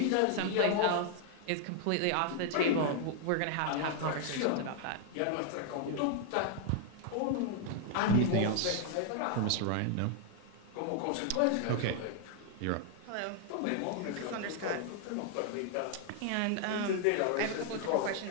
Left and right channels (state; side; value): different; both; correlation 0.00